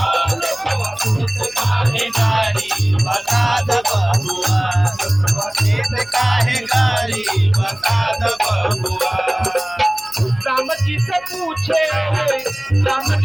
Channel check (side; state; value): right; noise; hum, 27 dB below the sound